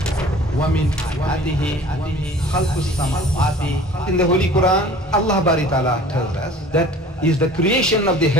In the Holy Quran, Allah Bari Ta'ala tells us that is the creation of the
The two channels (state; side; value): normal; both; correlation 0.46